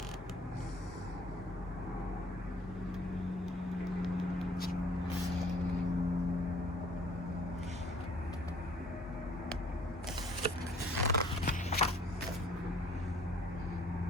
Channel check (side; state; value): both; normal; correlation 0.55